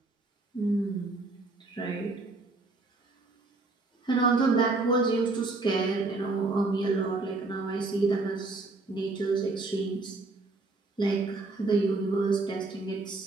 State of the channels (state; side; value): quieter; left; 3.4 dB